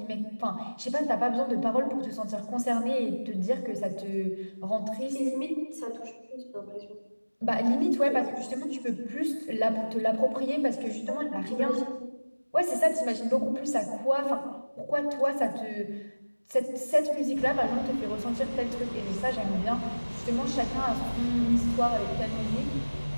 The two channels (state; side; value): inverted; both; correlation -1.00